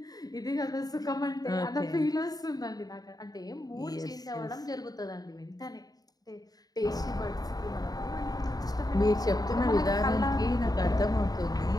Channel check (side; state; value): right; late; 0.18 ms